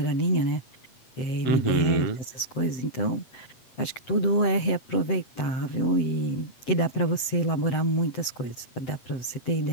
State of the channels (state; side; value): late; right; 7.9 ms